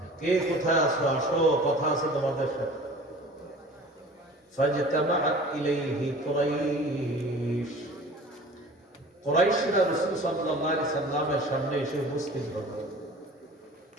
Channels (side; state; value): both; normal; correlation 0.43